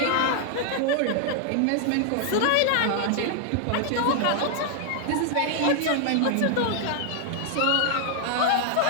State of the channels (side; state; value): both; different; correlation 0.00